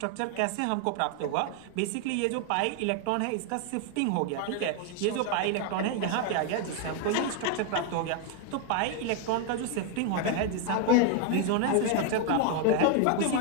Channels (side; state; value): both; different; correlation 0.01